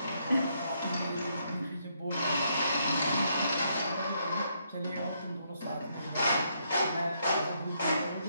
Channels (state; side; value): inverted; both; correlation -0.75